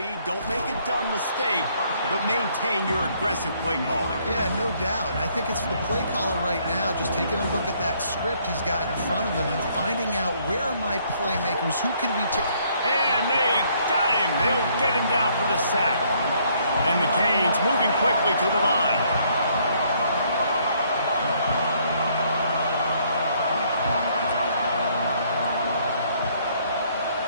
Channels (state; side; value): inverted; both; correlation -0.66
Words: Don't make a dumb mistake, but maintain your aggressive play calling. Yeah, no doubt. And I think it's the play caller right now just taking a look at that script he's got in front of him and finding out where are my playmakers, who can we take. And they got him. They'll get him down for the sack. And the Canes moving quickly to the line.